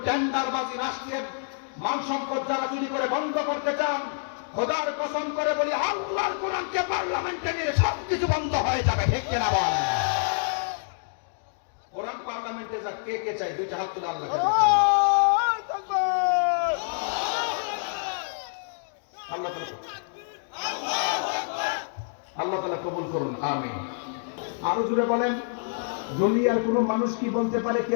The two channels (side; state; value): right; silent; digital silence